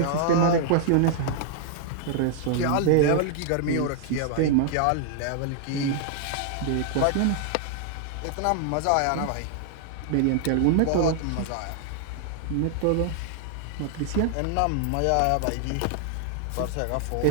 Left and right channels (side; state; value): both; different; correlation 0.00